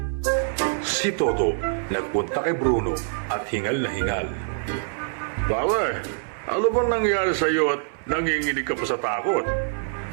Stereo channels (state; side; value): silent; left; 58 dB below the other